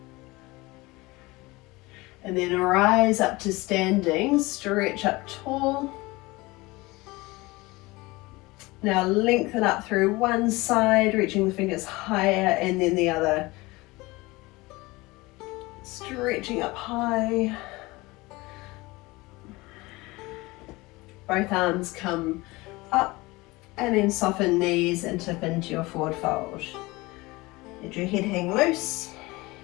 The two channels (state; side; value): quieter; right; 22.0 dB